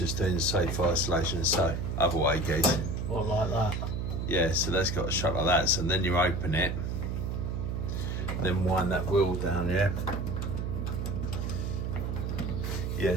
doing the safe isolation, so other way, guys. What, like that? Yeah, so that's got to shut like that. So then you open it, then wind that wheel down, yeah? Yeah,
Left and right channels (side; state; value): right; noise; hum, 2 dB below the sound